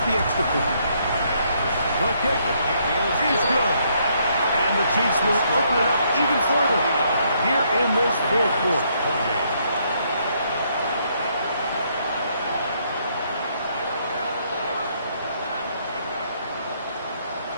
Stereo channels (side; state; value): both; inverted; correlation -0.71